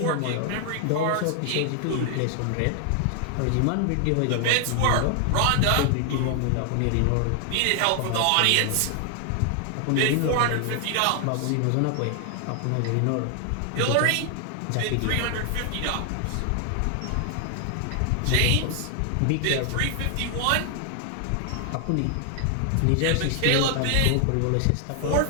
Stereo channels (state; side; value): different; both; correlation 0.00